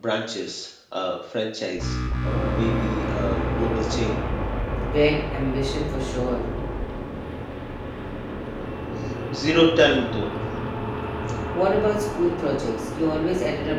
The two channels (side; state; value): both; identical; correlation 1.00